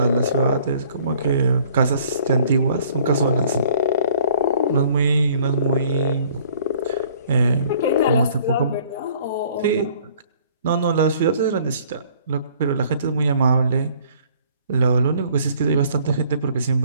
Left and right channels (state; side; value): inverted; both; correlation -0.57